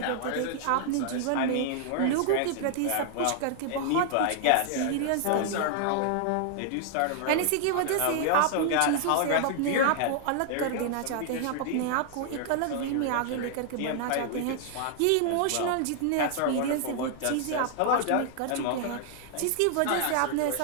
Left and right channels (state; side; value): different; both; correlation 0.00